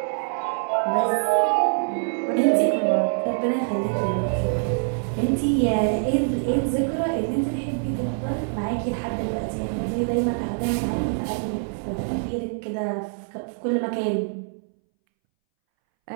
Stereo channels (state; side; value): silent; left; 62 dB below the other